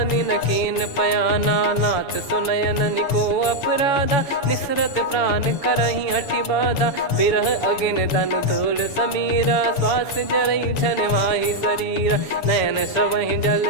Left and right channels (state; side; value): late; right; 7.0 ms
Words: न कीन पयाना। नाथ सुनयन निको अपराधा, निसरत प्राण करही हटि बाधा। बिरह अगिन तन तोल समीरा, श्वास जरई छन माही शरीरा। नयन श्रवहि जल